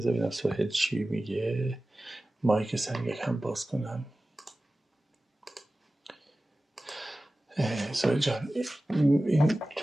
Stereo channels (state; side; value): normal; both; correlation 0.96